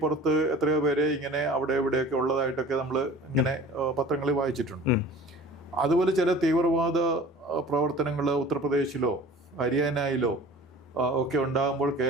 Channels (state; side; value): normal; both; correlation 0.43